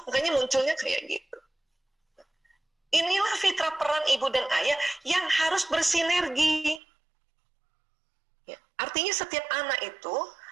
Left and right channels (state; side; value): drops out; left; at 6.8 s